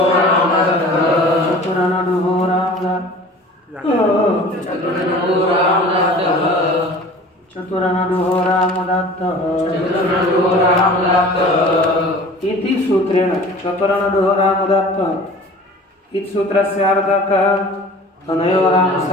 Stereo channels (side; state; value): both; normal; correlation 0.43